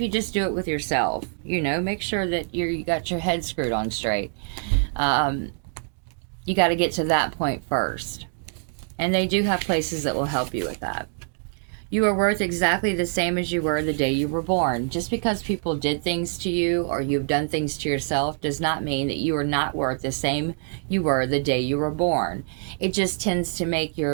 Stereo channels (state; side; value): silent; left; 62 dB below the other